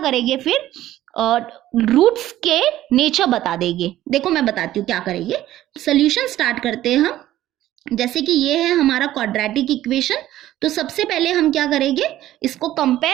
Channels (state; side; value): quieter; left; 13.9 dB